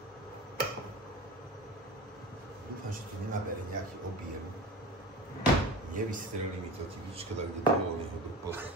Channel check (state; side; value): normal; both; correlation 0.33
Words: Dúfam, že to nenabere nejaký objem. Nevystrelí mi to typička, tak kde bolo neho